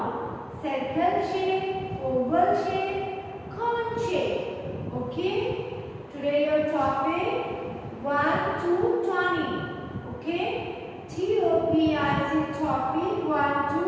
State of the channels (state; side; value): identical; both; correlation 1.00